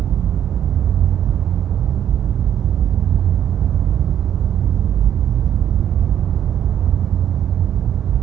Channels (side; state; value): left; quieter; 10.0 dB